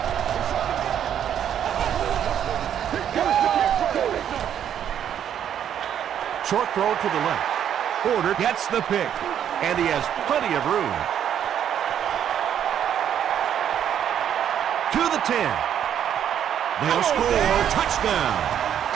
Short throw to the left. Porter gets the pick, and he has plenty of room. To the 10. They'll score. Touchdown.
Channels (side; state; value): left; quieter; 9.5 dB